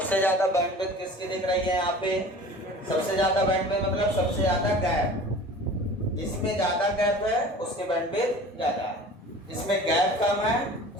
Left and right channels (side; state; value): both; normal; correlation 0.41